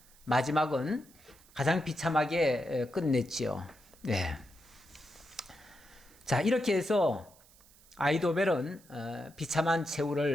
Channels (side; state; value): right; noise; hiss, 26 dB below the sound